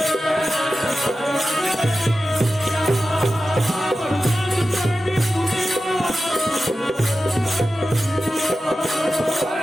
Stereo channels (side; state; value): both; normal; correlation 0.93